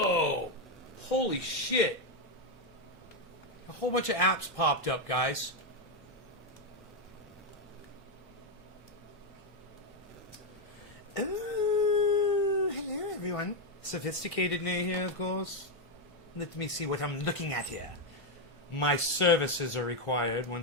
Holy shit. A whole bunch of apps popped up, guys. Everyone. Sophisticated Nay here, of course. Let me see what I'm looking at here. My services are required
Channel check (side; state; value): both; normal; correlation 0.04